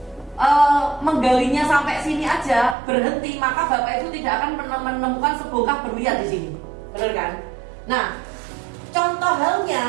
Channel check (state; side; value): drops out; left; at 2.8 s